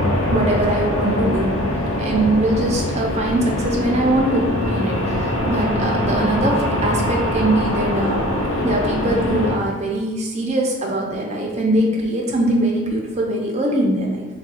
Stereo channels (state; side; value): normal; both; correlation 0.48